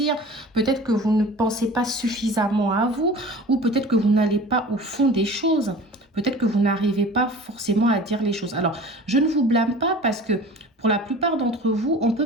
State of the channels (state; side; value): normal; both; correlation 0.41